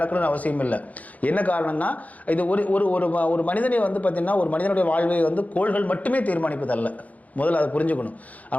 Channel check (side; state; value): right; late; 0.073 ms